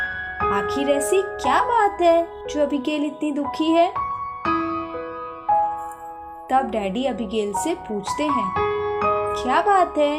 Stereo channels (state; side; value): identical; both; correlation 1.00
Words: आखिर ऐसी क्या बात है जो अबिगेल इतनी दुखी है? तब डैडी अबिगेल से पूछते हैं, क्या बात है,